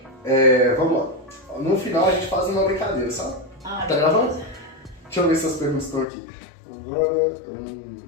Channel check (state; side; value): drops out; right; at 6.1 s